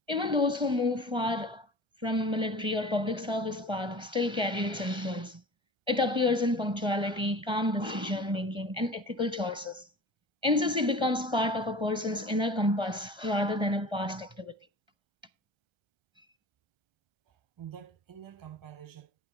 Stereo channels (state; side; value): late; left; 1.3 ms